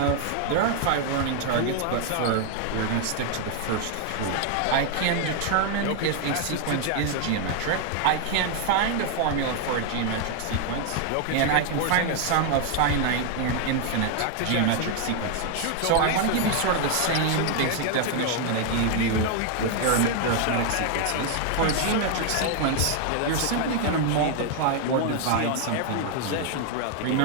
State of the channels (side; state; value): both; different; correlation 0.00